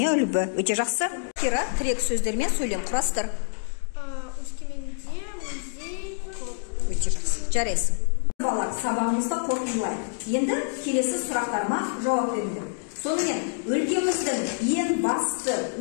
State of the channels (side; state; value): right; silent; 60 dB below the other